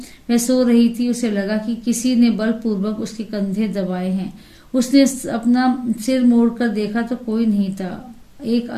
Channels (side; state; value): both; identical; correlation 1.00